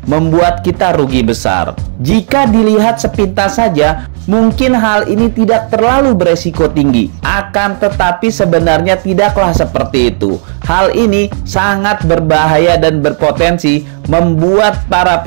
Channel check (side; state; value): left; silent; digital silence